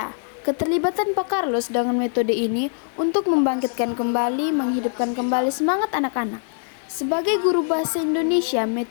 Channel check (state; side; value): silent; right; digital silence